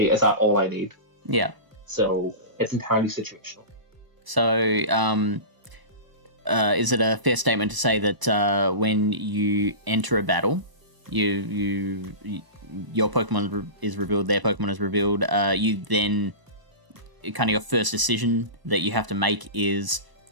that all I need? So it's entirely situational. So, is it a fair statement to say that when you enter a battle, your Pokemon is revealed, their Pokemon is revealed, you then, kind of your first decision that you have to make is,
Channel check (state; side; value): late; left; 1.0 ms